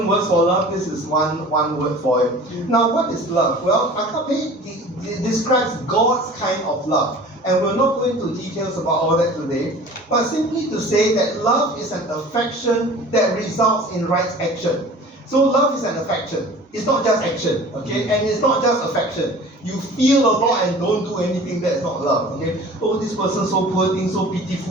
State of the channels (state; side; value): normal; both; correlation 0.43